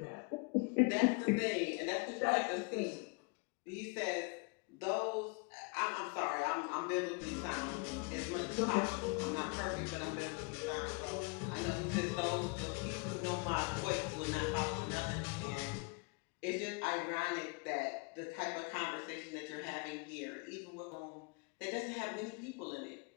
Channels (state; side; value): quieter; right; 32.2 dB